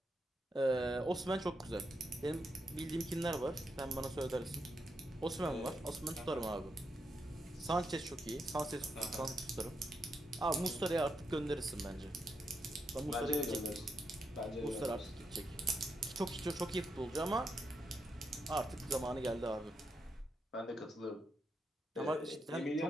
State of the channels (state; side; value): normal; both; correlation 0.82